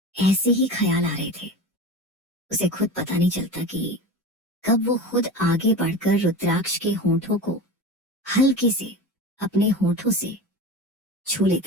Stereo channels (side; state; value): both; normal; correlation 0.30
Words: ऐसे ही ख्याल आ रहे थे। उसे खुद पता नहीं चलता कि कब वो खुद आगे बढ़कर रुद्राक्ष के होंठों को हल्के से अपने होंठों से छू